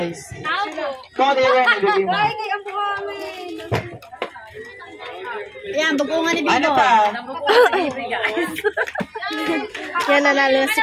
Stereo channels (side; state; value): both; identical; correlation 1.00